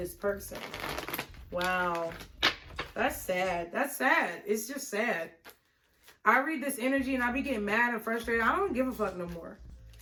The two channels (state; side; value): identical; both; correlation 1.00